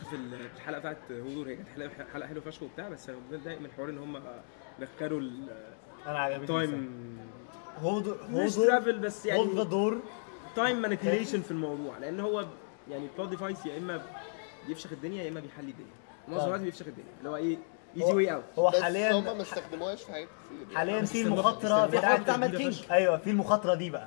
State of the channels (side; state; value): right; silent; digital silence